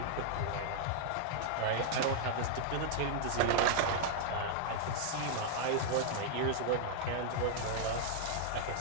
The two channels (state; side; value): different; both; correlation 0.00